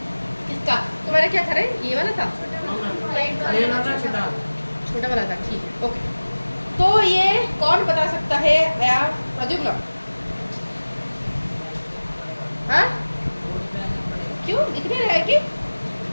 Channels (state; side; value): inverted; both; correlation -1.00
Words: किसका? तुम्हारा क्या था रे? ये वाला था, छोटा वाला था, ठीक है, ओके। तो ये कौन बता सकता है? प्रद्युम्न? हाँ, क्यों दिख नहीं रहा है कि?